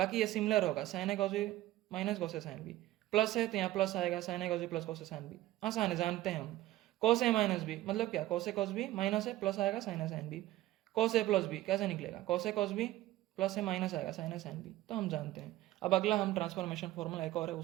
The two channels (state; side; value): quieter; left; 15.7 dB